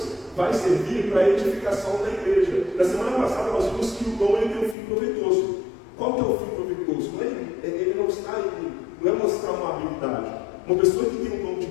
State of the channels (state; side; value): drops out; right; at 4.8 s